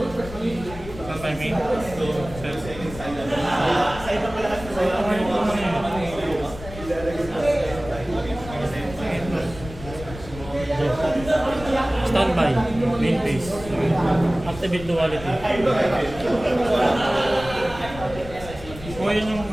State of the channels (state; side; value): noise; left; rumble, 13 dB below the sound